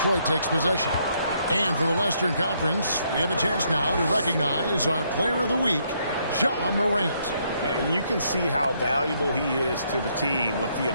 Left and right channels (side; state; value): both; inverted; correlation -0.72